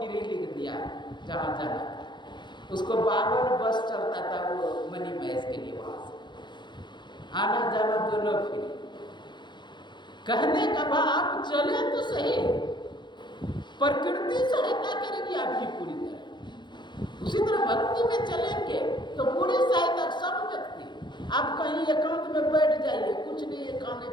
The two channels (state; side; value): late; right; 0.22 ms